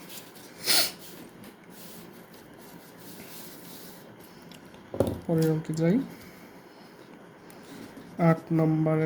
পরের অঙ্কে যাই, 8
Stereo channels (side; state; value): both; identical; correlation 1.00